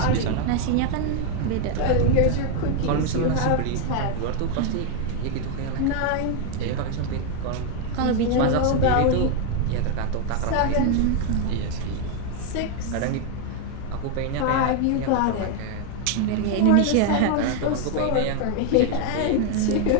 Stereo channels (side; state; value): both; different; correlation 0.01